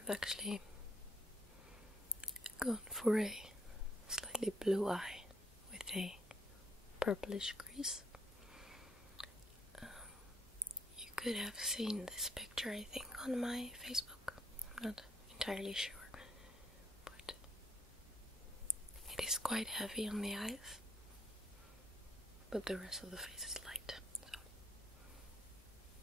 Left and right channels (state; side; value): normal; both; correlation 0.70